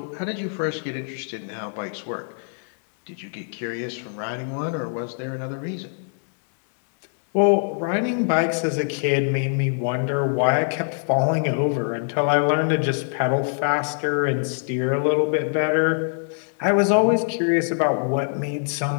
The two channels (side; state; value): right; silent; 63 dB below the other